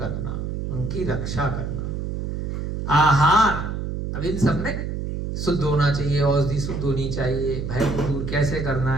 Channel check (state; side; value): noise; right; hum, 4 dB below the sound